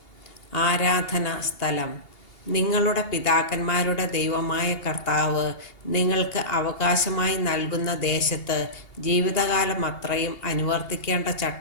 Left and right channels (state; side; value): late; right; 2.8 ms